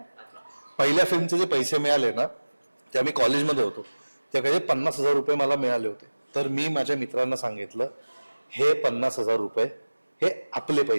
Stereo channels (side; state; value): both; inverted; correlation -1.00